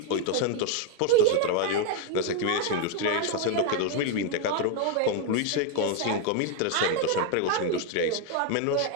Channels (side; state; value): both; different; correlation 0.01